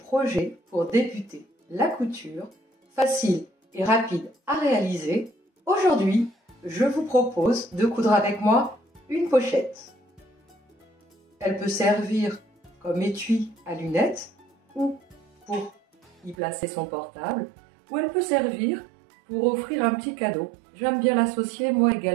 pour débuter la couture, facile et rapide à réaliser. Aujourd'hui, je vous propose de coudre avec moi une pochette. Elle peut servir comme étui à lunettes ou pour y placer son portable, ou elle peut servir pour offrir un petit cadeau. J'aime bien l'associer moi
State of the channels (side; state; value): left; drops out; at 16.4 s